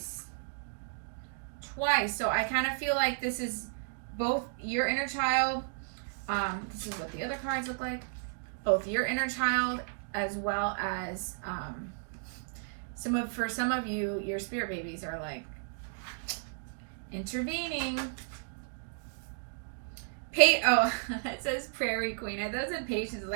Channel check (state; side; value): silent; left; digital silence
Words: So I kind of feel like this is both your inner child. This is what the other cards look like. Both your inner child as well as for some of you, your spirit babies are like intervening. Oh, it says Prairie Queen. I thought it said Patience.